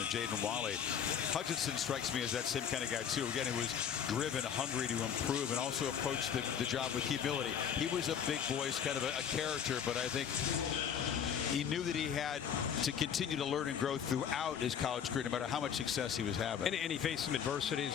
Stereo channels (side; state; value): right; quieter; 8.1 dB